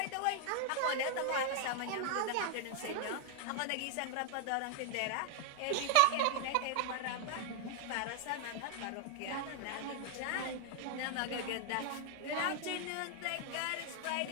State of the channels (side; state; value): both; different; correlation 0.00